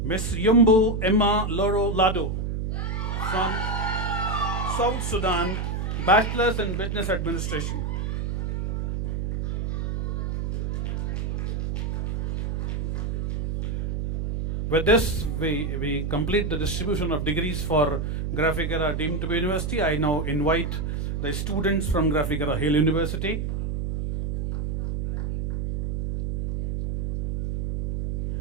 Ms. Yumbu Emma Loro Lado from South Sudan, Bachelor's in Business Administration. With this, we complete the distribution of degrees for Graphic Era deemed to be university. I now invite the students from Graphic Era Hill University.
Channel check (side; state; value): right; noise; hum, 1 dB below the sound